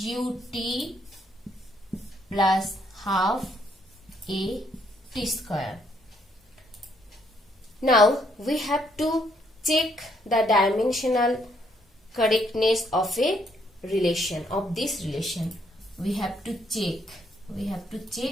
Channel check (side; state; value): both; normal; correlation 0.71